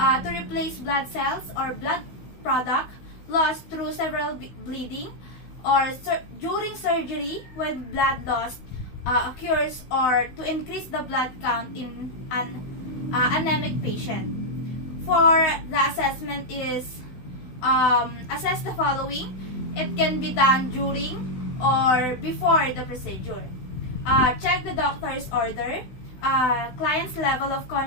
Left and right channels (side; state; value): right; late; 16 ms